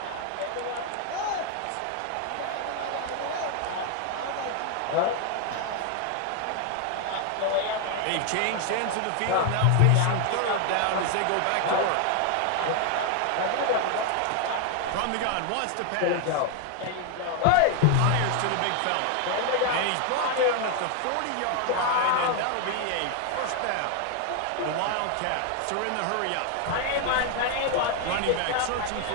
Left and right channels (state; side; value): different; both; correlation 0.01